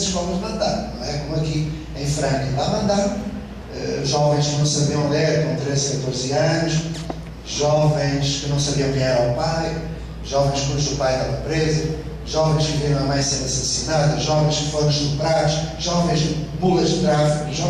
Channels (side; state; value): both; identical; correlation 1.00